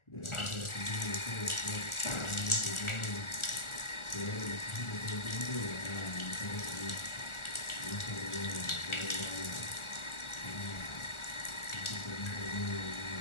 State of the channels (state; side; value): late; right; 1.4 ms